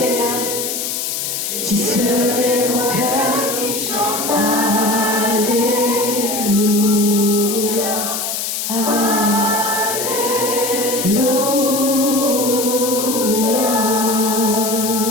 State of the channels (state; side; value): noise; left; hiss, 3 dB below the sound